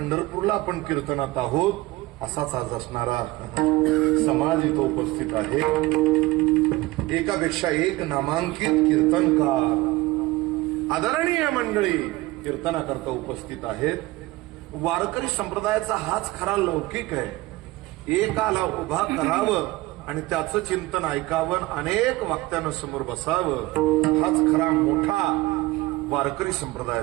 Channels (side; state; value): left; quieter; 19.8 dB